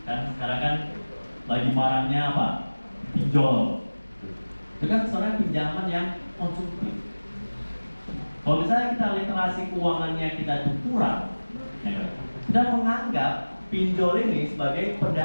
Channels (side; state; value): both; inverted; correlation -1.00